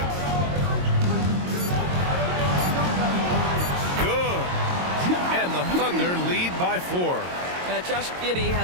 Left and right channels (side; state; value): left; late; 22 ms